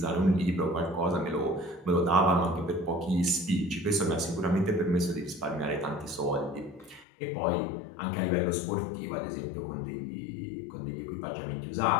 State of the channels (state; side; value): drops out; right; at 7.1 s